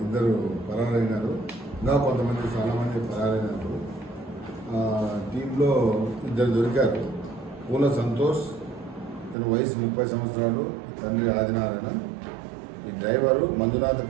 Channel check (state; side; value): drops out; left; at 9.3 s